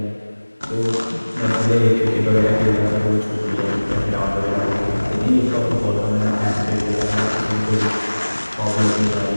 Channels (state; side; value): inverted; both; correlation -1.00